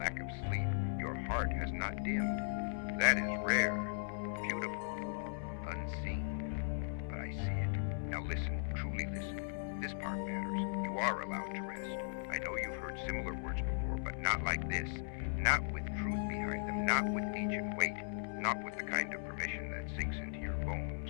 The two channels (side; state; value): right; silent; 52 dB below the other